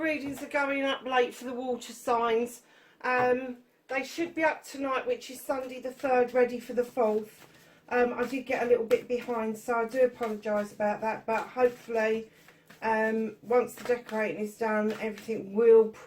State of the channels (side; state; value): both; identical; correlation 1.00